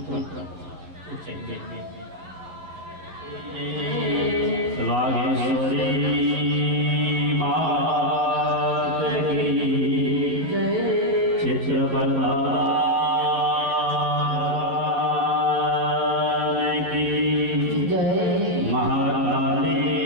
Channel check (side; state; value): left; late; 11 ms